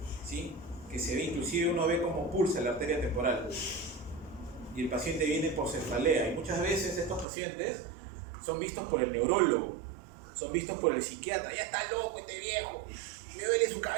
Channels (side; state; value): left; drops out; at 7.2 s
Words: ¿Sí? Que se ve, inclusive uno ve cómo pulsa la arteria temporal. Y el paciente viene por cefalea. Y muchas veces estos pacientes son vistos por el neurólogo, son vistos por el psiquiatra. Ya está loco este viejo, me duele su